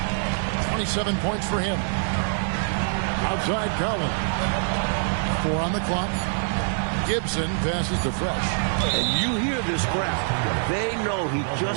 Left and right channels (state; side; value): silent; left; digital silence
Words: 27 points for him. Outside Collins. 4 on the clock. Gibson passes to Fresh. And you hear this crowd. They know he